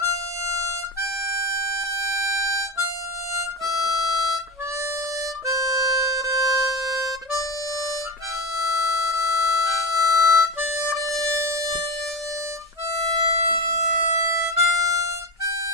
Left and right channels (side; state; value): both; normal; correlation 0.21